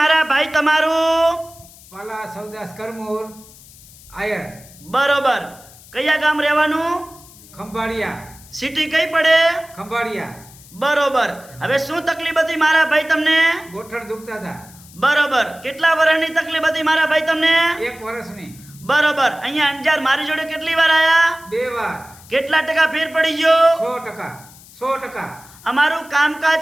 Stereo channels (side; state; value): left; noise; hiss, 22 dB below the sound